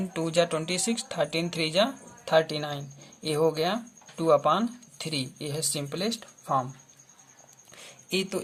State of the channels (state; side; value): identical; both; correlation 1.00